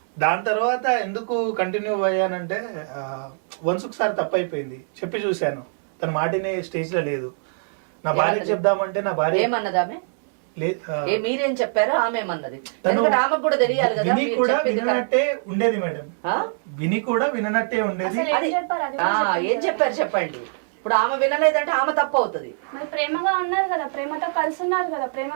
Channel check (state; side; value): silent; left; 63 dB below the other